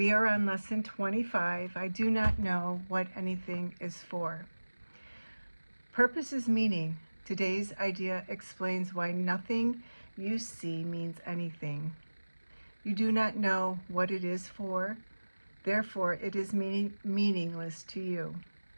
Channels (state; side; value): inverted; both; correlation -1.00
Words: are on lesson 25. I do not know what anything is for. Purpose is meaning. Today's idea explains why nothing you see means anything. You do not know what it is for, therefore it is meaningless to you.